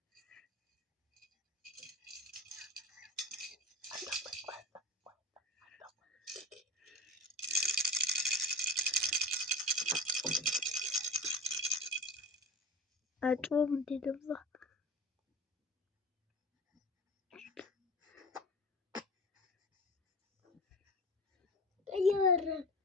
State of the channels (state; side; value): normal; both; correlation 0.33